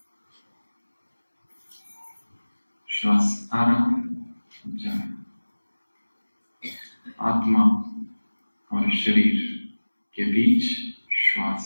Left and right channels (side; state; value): both; inverted; correlation -1.00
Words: श्वास आ रहा है, जा रहा है। आत्मा और शरीर के बीच श्वास